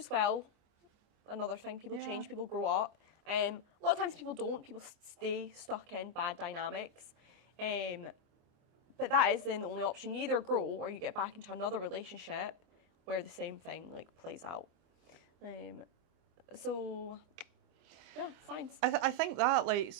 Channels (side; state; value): left; late; 25 ms